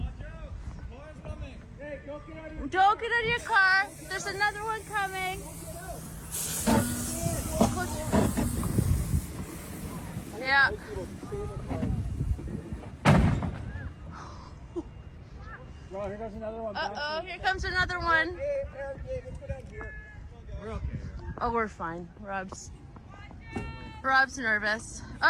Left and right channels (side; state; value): both; identical; correlation 1.00